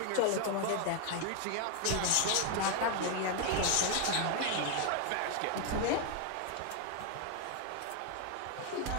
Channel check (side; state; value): both; different; correlation 0.01